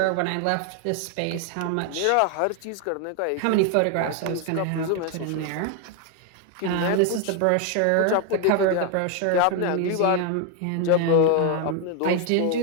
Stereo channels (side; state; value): both; different; correlation 0.01